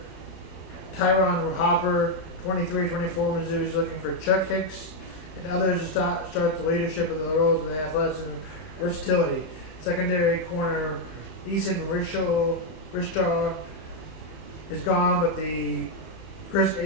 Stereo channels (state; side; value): late; right; 32 ms